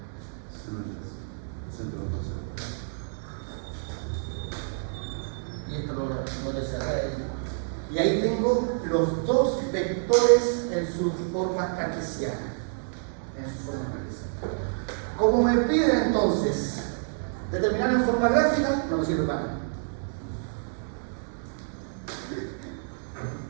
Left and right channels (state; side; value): silent; left; 59 dB below the other